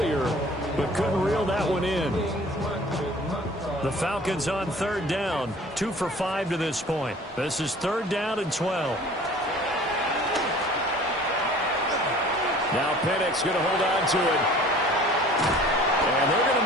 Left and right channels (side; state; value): both; normal; correlation 0.48